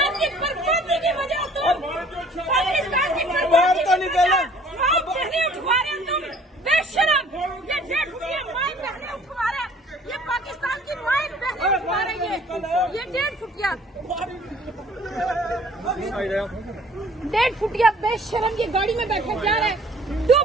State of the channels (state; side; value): normal; both; correlation 0.55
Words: की बर्बादी की वजह, तुम पाकिस्तान की बर्बादी की वजह माँ बहने उठवा रहे हो तुम, बेशरम। ये 1.5 फुटिया माँ बहने उठवा रहे, ये पाकिस्तान की माँ बहने उठवा रही है, ये 1.5 फुटिया बेशरम, ये गाड़ी में बैठा जा रहा है,